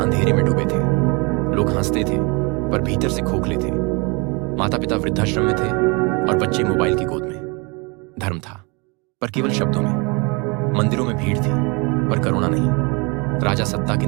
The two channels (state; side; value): quieter; left; 29.6 dB